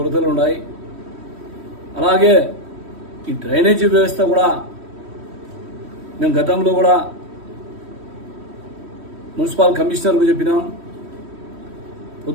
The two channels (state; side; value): late; left; 3.1 ms